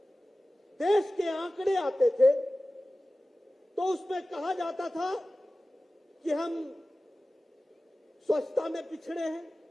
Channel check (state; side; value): normal; both; correlation 0.96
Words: देश के आंकड़े आते थे तो उसमें कहा जाता था कि हम स्वच्छता में पिछड़े हैं,